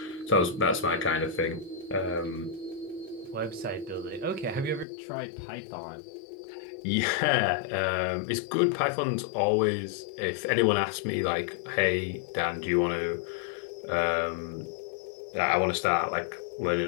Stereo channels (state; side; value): drops out; right; at 4.9 s